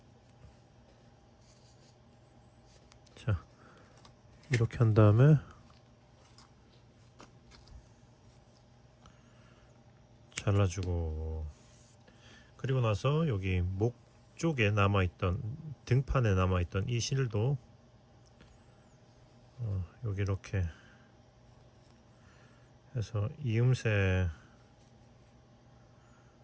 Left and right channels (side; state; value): both; identical; correlation 1.00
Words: 자, 이렇게 한 다음에 잘라주고, 그리고 나서 여기 목 쪽에 남아있던, 등판에 남아있던 이 실도 여기 이렇게 해서 이음새로